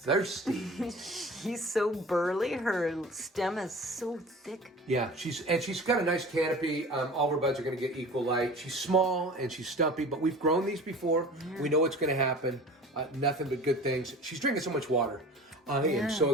She's so burly. Her stem is so thick. Yeah, she's got a nice canopy. All of her buds are going to get equal light. She's small and she's stumpy, but we've grown these before. Yeah. We know what's going to happen. Nothing but good things. She's drinking so much water. I am so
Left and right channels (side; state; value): both; normal; correlation 0.40